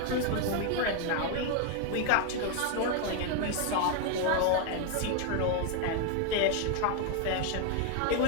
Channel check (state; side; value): different; both; correlation 0.01